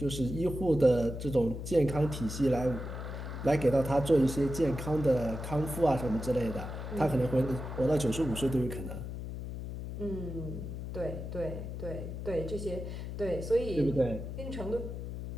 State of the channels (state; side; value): noise; left; hum, 7 dB below the sound